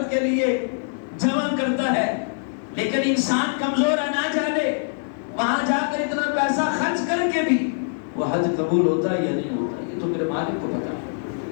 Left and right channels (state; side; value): silent; right; digital silence